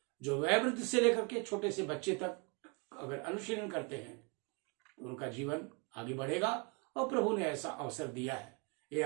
जो वयोवृद्ध से लेकर के छोटे से बच्चे तक अगर अनुशीलन करते हैं तो उनका जीवन आगे बढ़ेगा। और प्रभु ने ऐसा अवसर दिया है। ये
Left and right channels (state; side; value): quieter; left; 32.2 dB